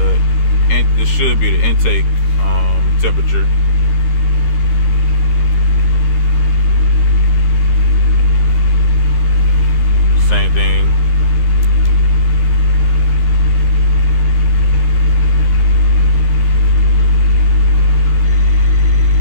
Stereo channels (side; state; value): right; late; 13 ms